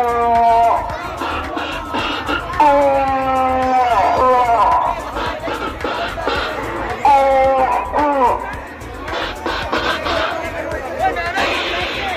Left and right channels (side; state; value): both; identical; correlation 1.00